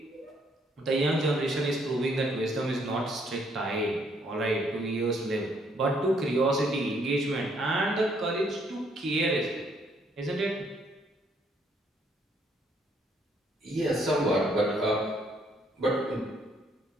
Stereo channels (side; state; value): both; normal; correlation 0.68